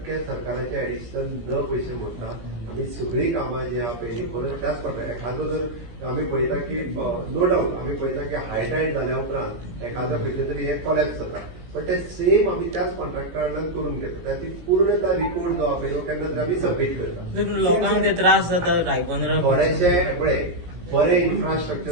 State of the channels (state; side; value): late; left; 17 ms